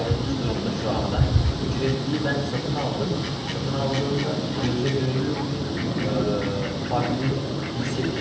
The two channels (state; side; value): identical; both; correlation 1.00